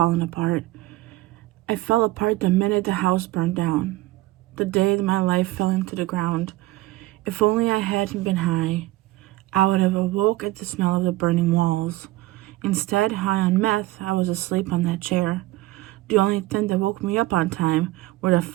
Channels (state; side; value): quieter; left; 18.4 dB